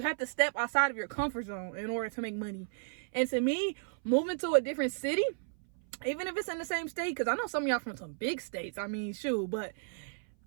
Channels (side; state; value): left; silent; 56 dB below the other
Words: have to step outside of your comfort zone in order to make money. And to me, moving to a different city, even if it's in the same state, because I know some of y'all from some big states, I mean, shoot, but